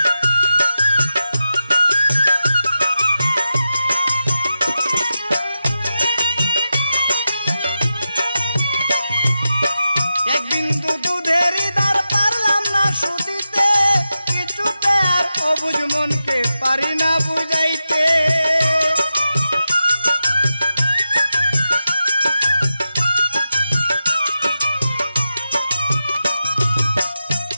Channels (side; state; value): both; inverted; correlation -0.90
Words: অবুঝ মনকে পারি না বুঝাইতে।